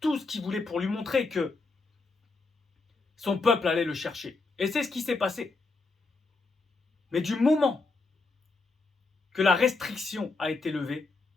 tout ce qu'il voulait pour lui montrer que son peuple allait le chercher. Et c'est ce qui s'est passé. Mais du moment que la restriction a été levée,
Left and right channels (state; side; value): quieter; right; 3.8 dB